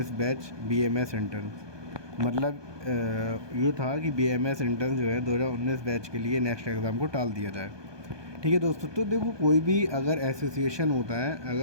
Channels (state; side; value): late; left; 1.2 ms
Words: batch BMS intern. मतलब ये था कि बीएमएस इंटर्न जो है 2019 बैच के लिए नेक्स्ट एग्ज़ाम को टाल दिया जाए। ठीक है दोस्तों, तो देखो कोई भी अगर एसोसिएशन होता है,